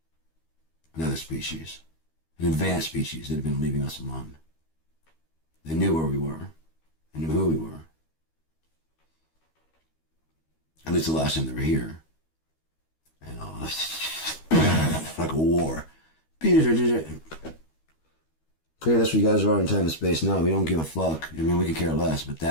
another species, an advanced species that had been leaving us alone. They knew where we were. They knew who we were. At least the last time they were here. And like a war. Okay, that's what you guys are in time and space now. We don't give a fuck. I mean, we could care less, but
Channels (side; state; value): right; late; 13 ms